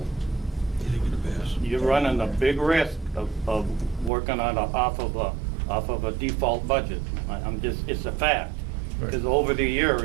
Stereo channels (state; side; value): drops out; left; at 4.1 s